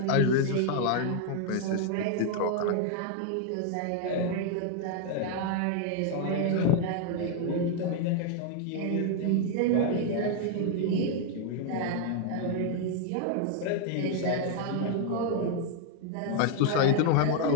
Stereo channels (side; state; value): both; different; correlation 0.00